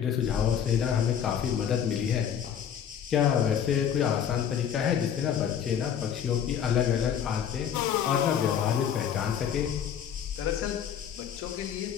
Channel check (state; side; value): quieter; right; 8.7 dB